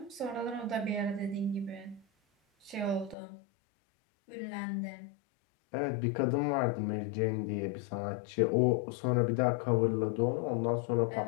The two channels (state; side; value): drops out; right; at 3.2 s